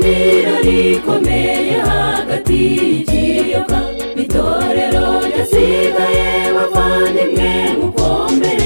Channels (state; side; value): inverted; both; correlation -1.00